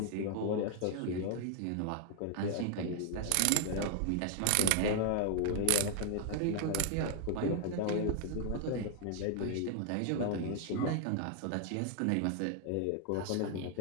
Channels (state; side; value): different; both; correlation 0.00